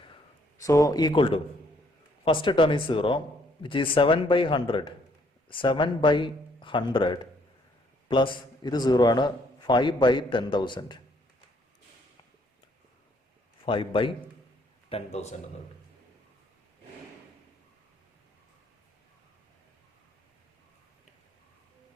so equal to first term is 0 which is 7/100. 7/100 plus ഇത് 0 ആണ്, 5/10,000. 5/10,000 എന്ന് കിട്ടും.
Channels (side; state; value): both; normal; correlation 0.67